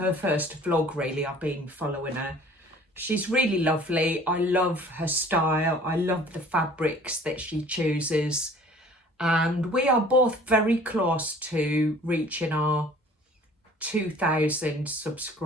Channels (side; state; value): both; normal; correlation 0.50